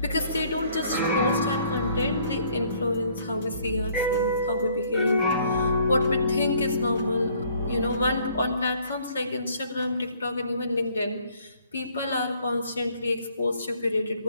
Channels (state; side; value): inverted; both; correlation -0.62